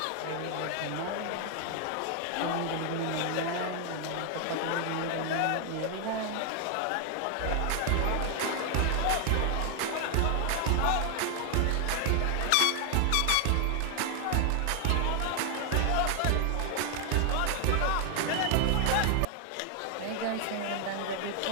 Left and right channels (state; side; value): different; both; correlation 0.00